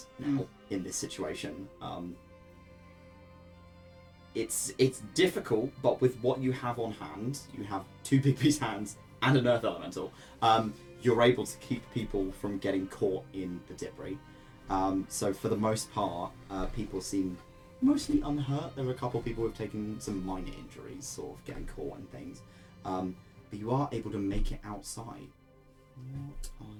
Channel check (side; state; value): both; identical; correlation 1.00